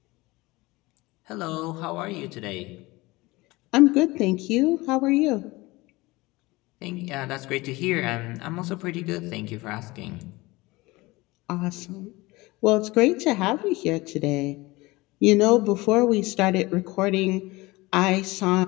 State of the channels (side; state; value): right; quieter; 21.6 dB